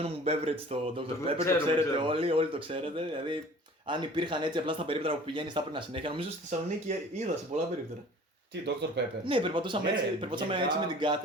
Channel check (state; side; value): normal; both; correlation 0.47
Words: μου beverage το Dr. Pepper, το ξέρουμε, ξέρετε ξέρουμε. όλοι το ξέρετε. Δηλαδή, αν υπήρχαν έτσι απλά στα περίπτερα που πηγαίνει, θα έπαιρνα συνέχεια. Νομίζω στη Θεσσαλονίκη είδα σε πολλά περίπτερα. Τι, Dr. Pepper. Ναι, περπατούσαμε, Ναι, περπατούσαμε γενικά. έτσι με την